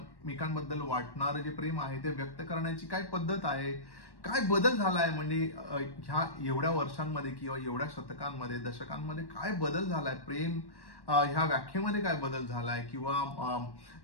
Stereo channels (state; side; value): late; right; 1.1 ms